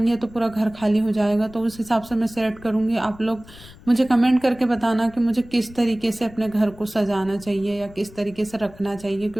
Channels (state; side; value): noise; left; rumble, 21 dB below the sound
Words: तो पूरा घर खाली हो जाएगा, तो उस हिसाब से मैं सेट करूँगी। आप लोग मुझे कमेंट करके बताना कि मुझे किस तरीके से अपने घर को सजाना चाहिए या किस तरीके से रखना चाहिए,